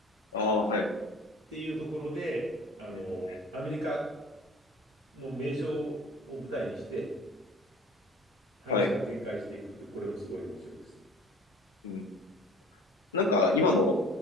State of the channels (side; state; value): both; normal; correlation 0.44